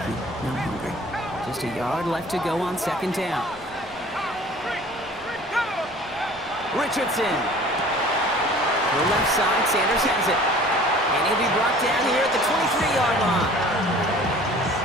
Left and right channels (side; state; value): right; noise; rumble, 24 dB below the sound